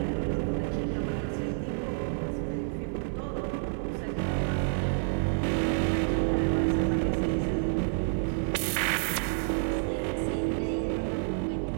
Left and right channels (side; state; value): left; silent; 55 dB below the other